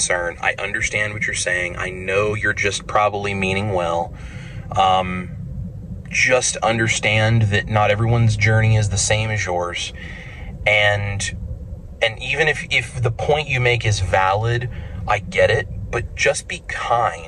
I understand what you're saying. I know you're just probably meaning well. Just understand that not everyone's journey is the same as yours. And even if the point you make is valid, I get it, but just be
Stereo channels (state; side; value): identical; both; correlation 1.00